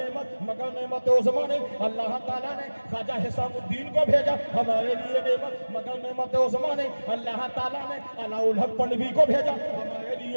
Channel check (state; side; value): inverted; both; correlation -1.00